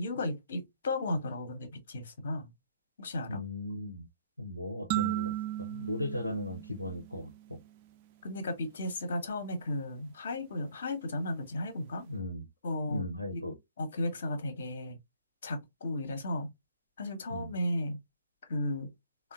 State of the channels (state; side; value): inverted; both; correlation -0.63